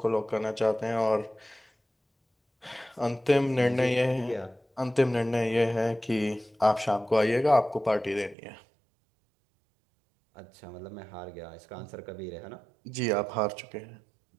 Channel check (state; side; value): drops out; left; at 8.3 s